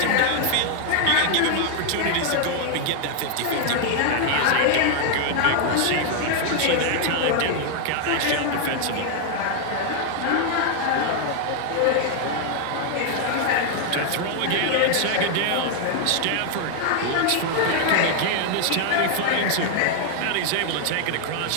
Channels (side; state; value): both; different; correlation 0.00